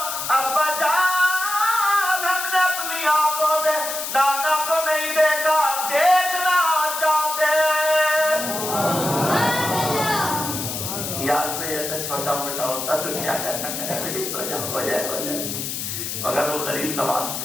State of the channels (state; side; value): noise; left; hiss, 4 dB below the sound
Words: ابا جان ہم نے اپنی آنکھوں سے نانا کو نہیں دیکھا، دیکھنا چاہتے۔ یار کوئی ایسا چھوٹا موٹا ہوتا تو کیا کرتا، کہتا بیٹی سو جاؤ، ہو جائے ہو جائے، مگر وہ غریب نواز